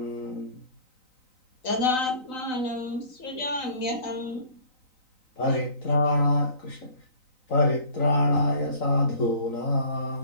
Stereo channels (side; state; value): right; late; 3.9 ms